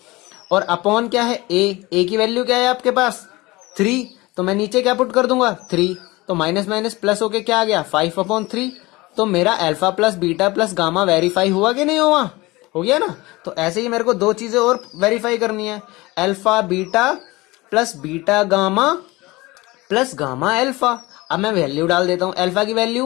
और अपॉन क्या है a की वैल्यू क्या है आपके पास 3, तो मैं नीचे क्या पुट कर दूंगा 3, तो माइनस माइनस प्लस होके क्या आ गया 5/3। तो मेरा alpha plus beta plus gamma verify हुआ कि नहीं हुआ, हो गया ना। तो ऐसे ही मेरे को दो चीजें और वेरीफाई करनी है, alpha beta plus beta gamma plus gamma alpha. अब मैं वैल्यू डाल देता हूं, अल्फा की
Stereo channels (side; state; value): right; quieter; 21.5 dB